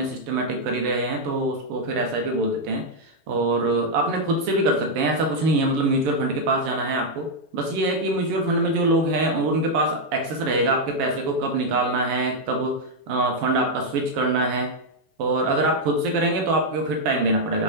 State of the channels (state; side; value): late; left; 7.1 ms